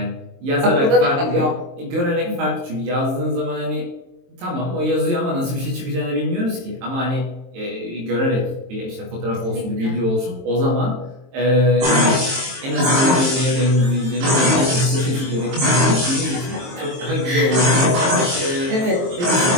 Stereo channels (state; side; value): late; left; 23 ms